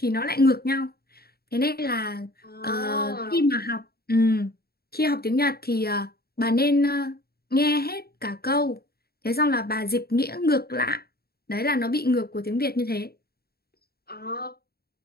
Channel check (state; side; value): late; right; 0.45 ms